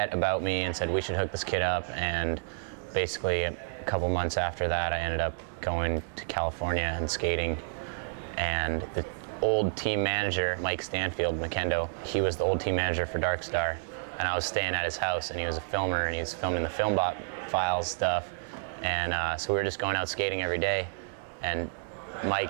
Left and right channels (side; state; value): left; silent; digital silence